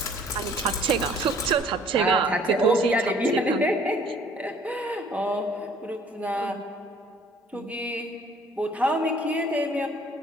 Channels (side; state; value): both; normal; correlation 0.55